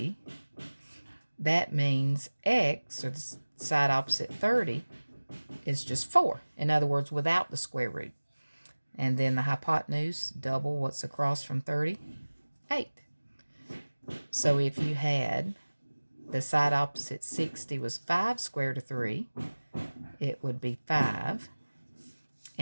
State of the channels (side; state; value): both; inverted; correlation -1.00